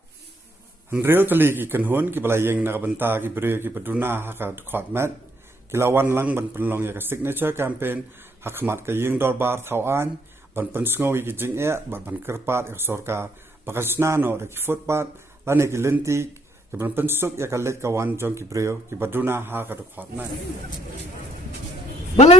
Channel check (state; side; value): normal; both; correlation 0.70